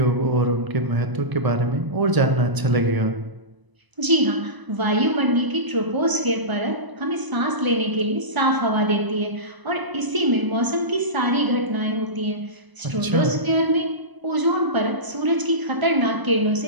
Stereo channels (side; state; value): left; late; 1.0 ms